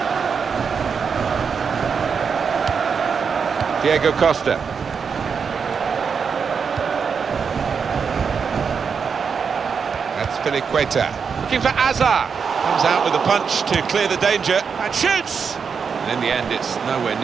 Diego Costa. That's Piliqueta. Looking for Azar. Comes out with a punch to clear the danger and shoots. And in the end, it's nowhere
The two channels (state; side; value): quieter; left; 6.1 dB